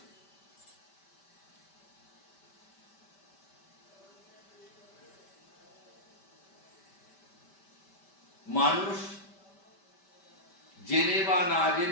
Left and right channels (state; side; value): late; right; 5.1 ms